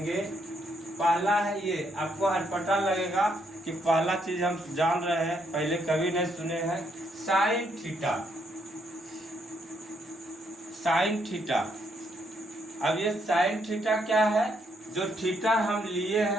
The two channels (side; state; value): both; normal; correlation 0.74